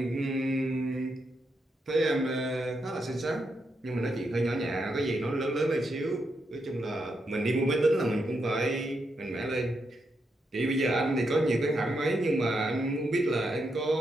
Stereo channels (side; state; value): both; normal; correlation 0.82